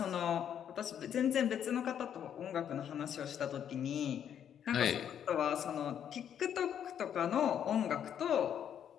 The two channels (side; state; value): right; quieter; 9.2 dB